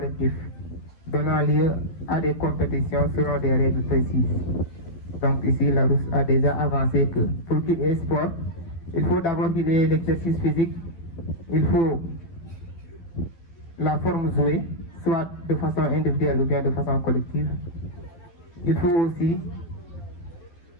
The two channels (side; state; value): right; late; 12 ms